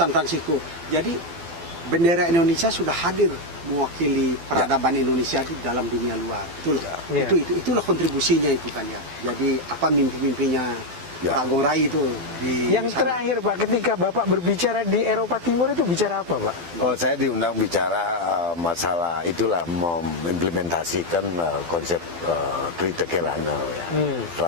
Francisco. Jadi bendera Indonesia sudah hadir mewakili peradaban Indonesia di dalam dunia luar. Itulah kontribusinya itu kan ya. Jadi apa mimpi-mimpinya Pak Gung Rai itu yang terakhir Pak, ketika Bapak berbicara di Eropa Timur itu bicara apa Pak? Saya diundang bicara masalah itulah mengimplementasikan konsep Trita Kirana ya.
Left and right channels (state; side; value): late; left; 12 ms